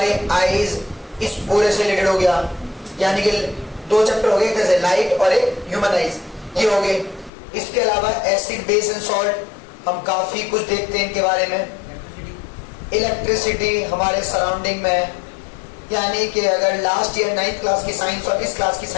आईज इस पूरे से रिलेटेड हो गया। यानी कि 2 चैप्टर हो गए, एक जैसे लाइट और एक ह्यूमन आईज, ये हो गए। इसके अलावा एसिड, बेस एंड सॉल्ट, हम काफी कुछ देखते हैं इनके बारे में। इलेक्ट्रिसिटी हमारे सराउंडिंग में, यानी कि अगर लास्ट ईयर 9th क्लास की साइंस और इस क्लास की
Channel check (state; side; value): drops out; right; at 7.3 s